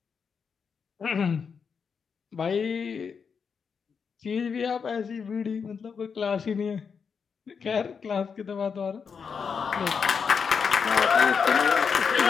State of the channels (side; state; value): right; quieter; 6.1 dB